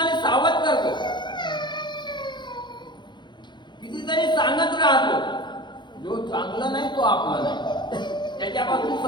सावध करतो, कितीतरी सांगत राहतो, जो चांगलं नाही तो आपला नाही, त्याच्यापासून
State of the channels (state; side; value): late; right; 0.22 ms